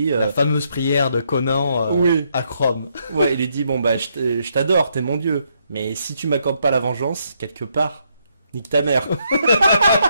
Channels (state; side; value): inverted; both; correlation -0.76